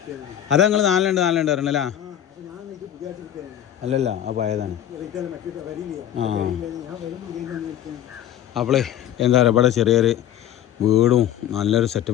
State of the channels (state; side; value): quieter; right; 11.0 dB